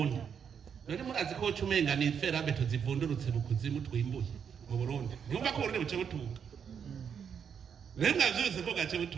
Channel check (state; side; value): quieter; left; 7.4 dB